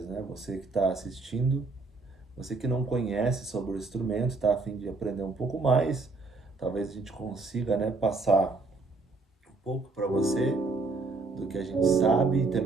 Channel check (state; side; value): quieter; left; 3.7 dB